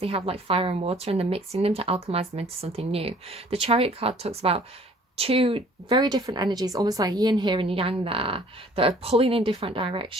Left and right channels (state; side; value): normal; both; correlation 0.55